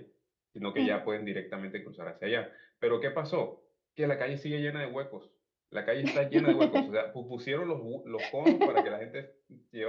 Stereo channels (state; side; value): identical; both; correlation 1.00